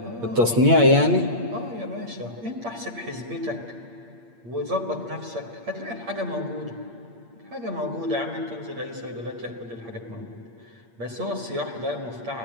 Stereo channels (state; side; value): late; left; 8.6 ms